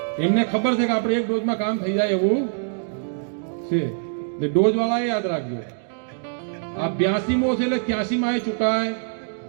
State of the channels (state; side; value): silent; left; digital silence